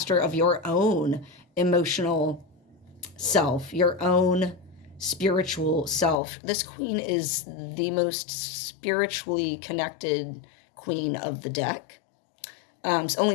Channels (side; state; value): right; drops out; at 6.2 s